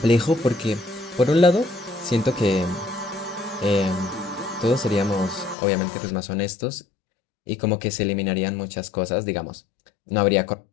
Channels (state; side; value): drops out; right; at 5.6 s